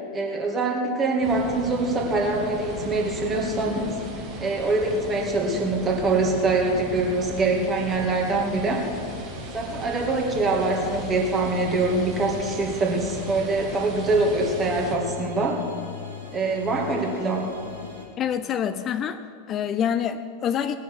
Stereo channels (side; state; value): both; normal; correlation 0.33